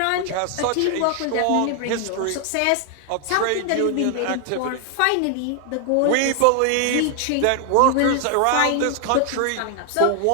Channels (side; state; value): both; different; correlation 0.00